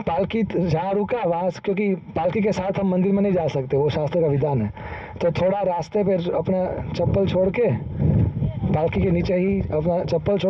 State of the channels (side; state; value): both; identical; correlation 1.00